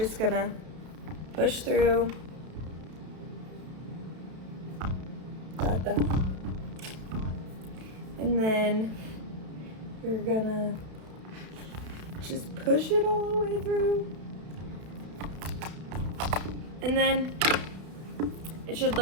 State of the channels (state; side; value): late; left; 32 ms